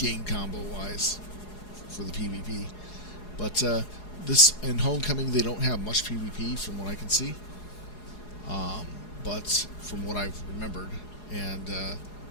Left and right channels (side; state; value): right; late; 4.8 ms